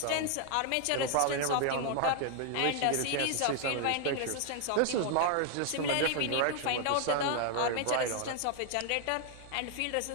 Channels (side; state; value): both; different; correlation 0.00